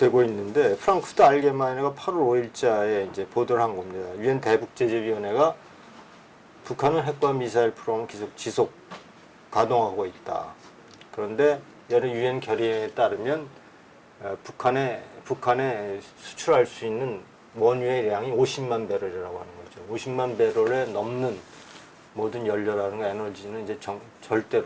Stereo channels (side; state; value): both; identical; correlation 1.00